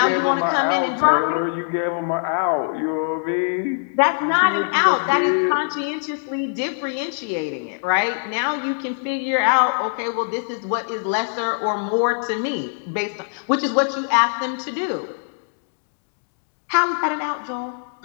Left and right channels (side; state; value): right; silent; digital silence